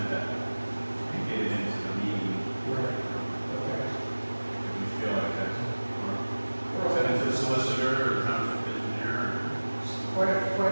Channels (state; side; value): inverted; both; correlation -1.00